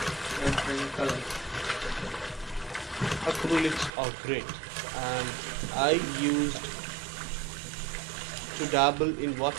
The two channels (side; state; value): left; drops out; at 3.9 s